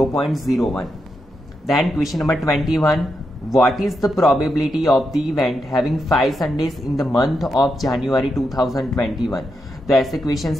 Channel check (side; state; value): both; normal; correlation 0.84